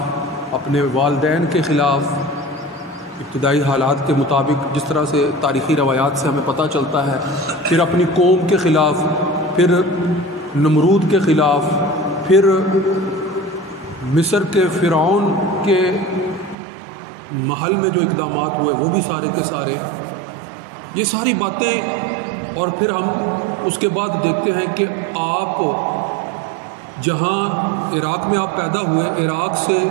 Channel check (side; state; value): left; drops out; at 16.6 s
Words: اپنے والدین کے خلاف، ابتدائی حالات کے مطابق جس طرح سے تاریخی روایات سے ہمیں پتہ چلتا ہے، پھر اپنی قوم کے خلاف، پھر نمرود کے خلاف، پھر مصر کے فرعون کے محل میں جو اقدامات ہوئے وہ بھی سارے کے سارے، یہ ساری باتیں۔ اور پھر ہم اس کے بعد دیکھتے ہیں کہ آپ جہاں عراق میں آپ پیدا ہوئے،